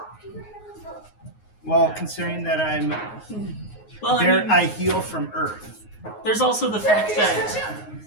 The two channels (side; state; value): right; late; 9.5 ms